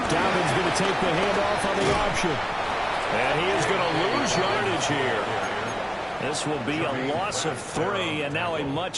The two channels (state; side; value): identical; both; correlation 1.00